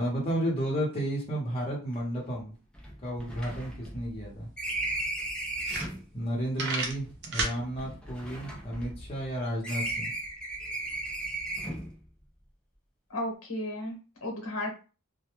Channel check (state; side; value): normal; both; correlation 0.52